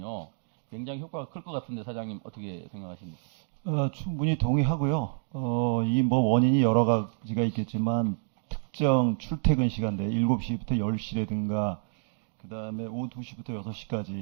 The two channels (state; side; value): silent; left; 59 dB below the other